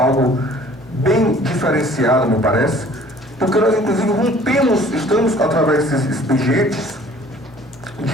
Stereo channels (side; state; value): both; normal; correlation 0.53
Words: bem diferenciado, me parece, porque nós, inclusive, estamos, através desses expedientes